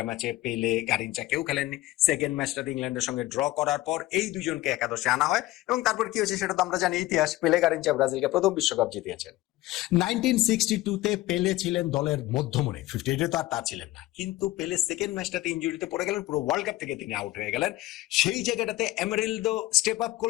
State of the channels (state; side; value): quieter; right; 17.2 dB